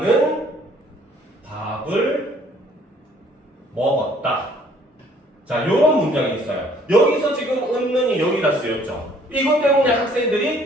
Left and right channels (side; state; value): both; normal; correlation 0.60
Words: 밥을 먹었다. 자, 요런 문장이 있어요. 여기서 지금 은는이 여기다 쓰였죠. 이것 때문에